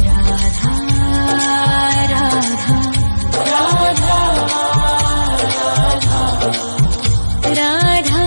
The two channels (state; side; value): inverted; both; correlation -1.00